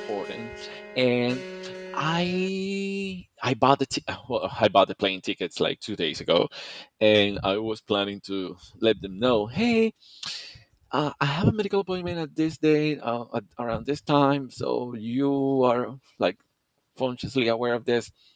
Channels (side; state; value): both; identical; correlation 1.00